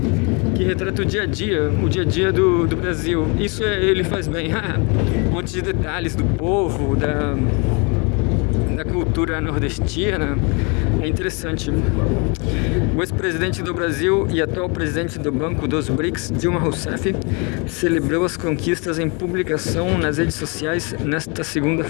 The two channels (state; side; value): quieter; right; 32.2 dB